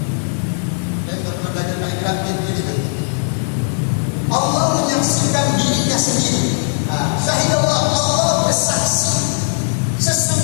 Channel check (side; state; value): right; silent; 68 dB below the other